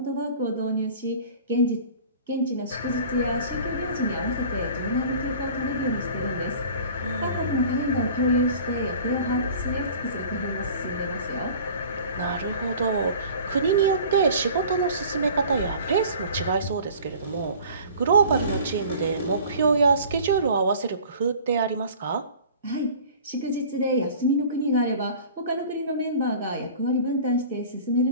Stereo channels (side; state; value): both; inverted; correlation -0.45